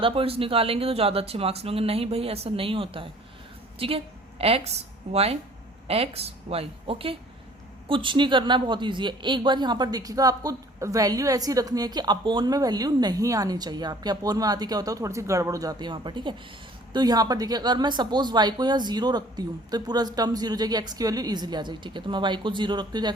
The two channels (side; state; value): both; normal; correlation 0.53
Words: पॉइंट्स निकालेंगे तो ज्यादा अच्छे मार्क्स मिलेंगे। नहीं भाई, ऐसा नहीं होता है। ठीक है, एक्स वाई ओके, कुछ नहीं करना है, बहुत ईजी है। एक बार यहाँ पर देखिएगा, आपको वैल्यू ऐसी रखनी है कि अपोन में वैल्यू नहीं आनी चाहिए। आपके अपोन में आती क्या होता है, थोड़ी सी गड़बड़ हो जाती है वहाँ पर। ठीक है, तो यहाँ पर देखिए, अगर मैं सपोज y को यहाँ 0 रखती हूँ तो पूरा टर्म 0 हो जाएगी, x की वैल्यू इजीली आ जाएगी। ठीक है, तो मैं y को 0 रखती हूँ तो